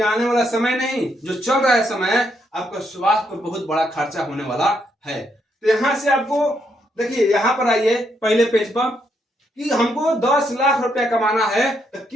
आने वाला समय नहीं, जो चल रहा है समय, आपका स्वास्थ्य पर बहुत बड़ा खर्चा होने वाला है। तो यहां से आपको देखिए, यहां पर आइए पहले पेज पर, कि हमको 10 लाख रुपया कमाना है तो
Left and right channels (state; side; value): normal; both; correlation 0.76